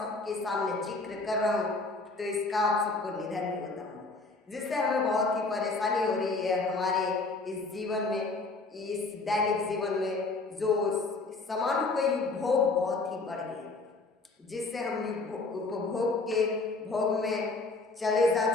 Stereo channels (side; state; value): right; quieter; 3.6 dB